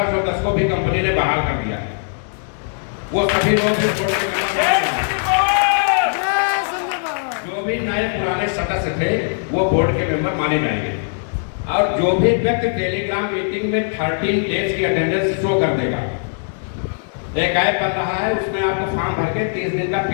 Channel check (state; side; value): silent; right; digital silence